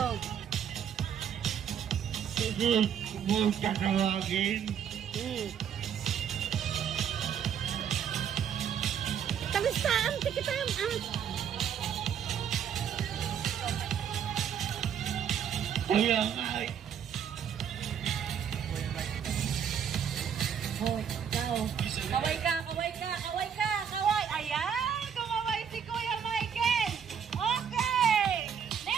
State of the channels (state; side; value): quieter; left; 8.2 dB